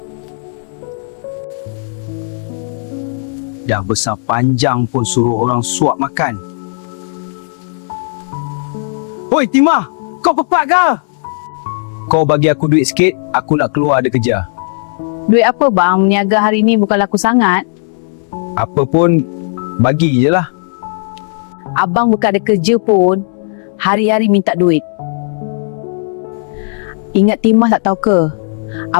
Dah besar panjang pun suruh orang suap makan. Hoi Timah, kau pepat ke? Kau bagi aku duit sikit, aku nak keluar ada kerja. Duit apa bang? Meniaga hari ni bukan laku sangat. Apa pun, bagi je lah. Abang bukan ada kerja pun, hari-hari minta duit. Ingat Timah tak tahu ke?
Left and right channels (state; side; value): silent; right; digital silence